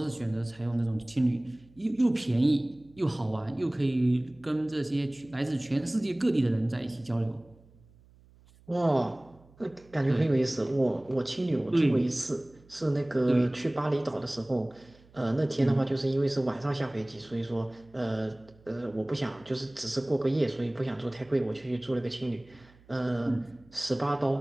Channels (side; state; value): right; noise; hum, 27 dB below the sound